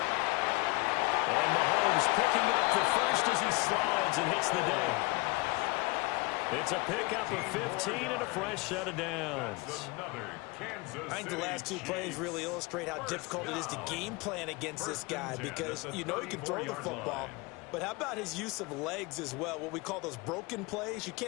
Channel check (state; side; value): quieter; right; 24.6 dB